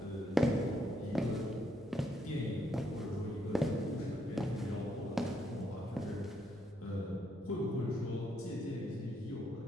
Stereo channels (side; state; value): both; normal; correlation 0.75